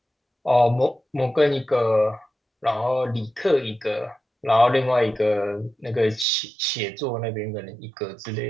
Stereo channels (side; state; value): left; drops out; at 6.2 s